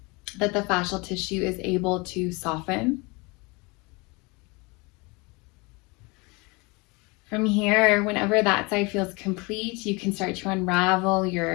that the fascial tissue is able to soften. From here, whenever that side feels complete, you can start to unravel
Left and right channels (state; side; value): quieter; right; 26.9 dB